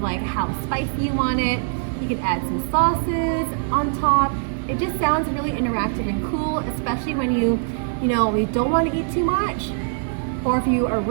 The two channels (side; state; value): left; silent; 56 dB below the other